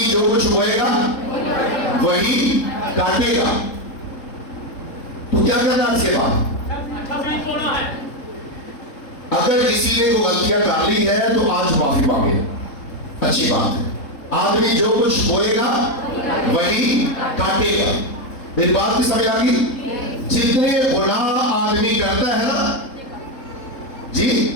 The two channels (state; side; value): late; right; 3.7 ms